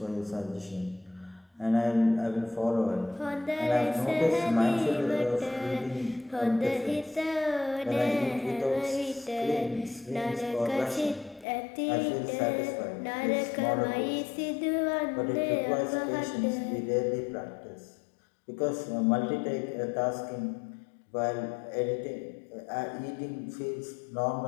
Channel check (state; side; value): drops out; right; at 11.5 s